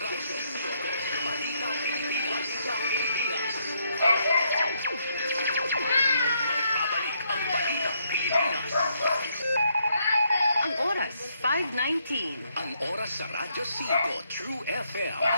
Pilipinas. Babalik ang Balita Pilipinas. Ang oras, 5:19. Ang oras sa Radyo 5 True FM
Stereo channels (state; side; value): inverted; both; correlation -0.74